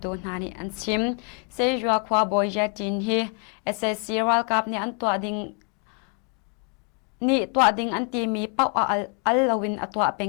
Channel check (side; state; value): right; quieter; 38.5 dB